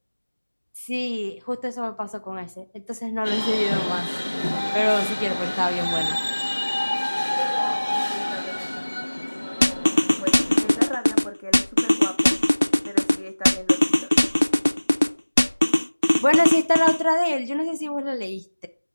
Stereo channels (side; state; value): both; inverted; correlation -1.00